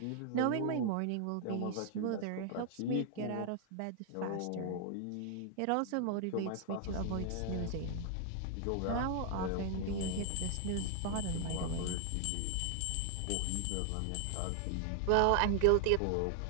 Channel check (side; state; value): both; different; correlation 0.00